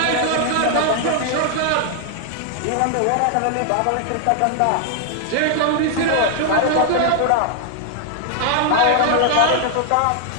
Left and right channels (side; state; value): both; different; correlation 0.00